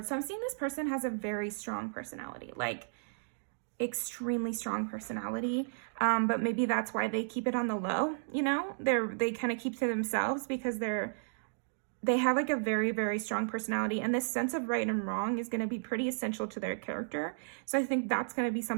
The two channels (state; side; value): silent; left; digital silence